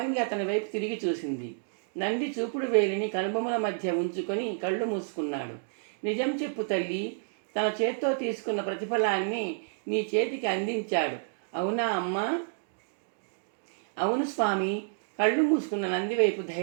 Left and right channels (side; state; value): left; silent; digital silence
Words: అతని వైపు తిరిగి చూసింది. నంది చూపుడు వేలిని కనుబొమ్మల మధ్య ఉంచుకొని కళ్ళు మూసుకున్నాడు. నిజం చెప్పు తల్లి. తన చేత్తో తీసుకున్న ప్రతిఫలాన్ని నీ చేతికి అందించాడు. అవునా అమ్మా? అవును స్వామి. కళ్ళు మూసుకున్న నంది వైపు